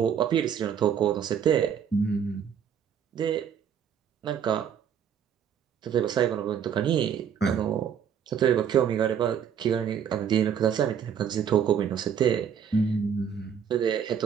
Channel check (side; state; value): left; quieter; 8.2 dB